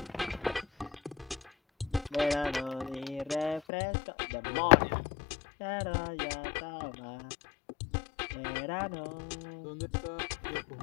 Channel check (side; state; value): right; drops out; at 3.6 s